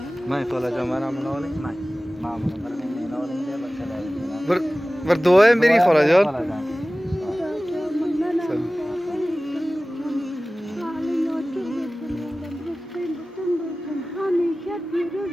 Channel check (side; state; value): both; normal; correlation 0.97